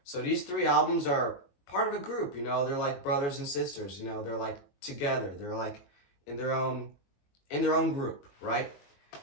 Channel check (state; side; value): late; right; 21 ms